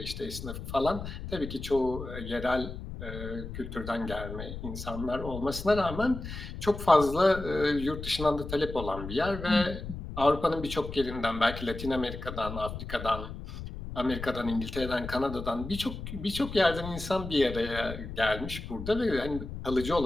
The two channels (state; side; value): noise; left; rumble, 9 dB below the sound